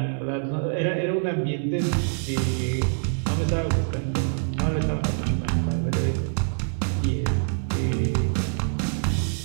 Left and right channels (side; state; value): left; silent; digital silence